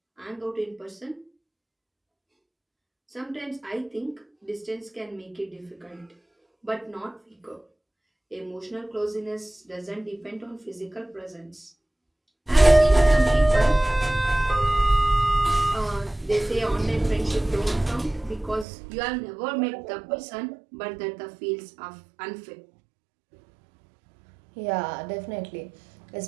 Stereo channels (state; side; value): drops out; left; at 18.7 s